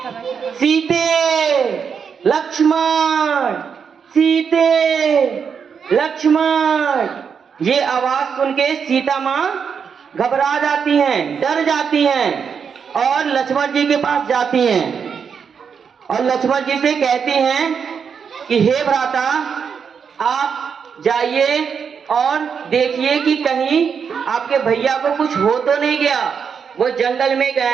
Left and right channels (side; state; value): left; quieter; 6.6 dB